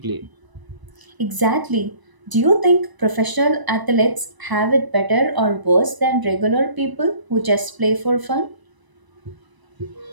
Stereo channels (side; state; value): left; late; 1.0 ms